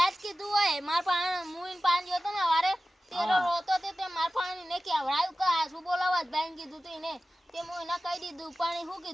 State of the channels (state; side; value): normal; both; correlation 0.95